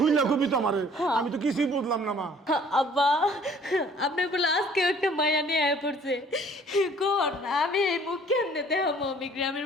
কবি তো আমারে, আমি তো কিছুই বুঝলাম না মা। আব্বা, আপনি বলে আজকে একটা মায়া নিয়ে আয় পড়ছে। কোন আমি এই মুখ কেমনে দেখাবো আমি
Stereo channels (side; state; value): both; normal; correlation 0.55